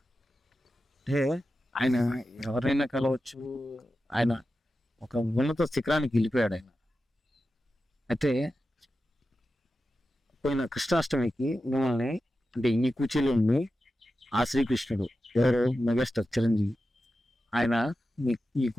అంటే ఆయన ఎవరైనా కలవచ్చు, ఆయన ఒక ఉన్నత శిఖరానికి వెళ్ళిపోయాడు ఆయన. అయితే పోయిన కృష్ణాష్టమికి మిమ్మల్ని అంటే ఈ కూర్చీలో ఉండి ఆ శ్రీకృష్ణుడు ఎవరు మెగాస్టార్ చిరంజీవి ఆయన ఈ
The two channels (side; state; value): both; normal; correlation 0.92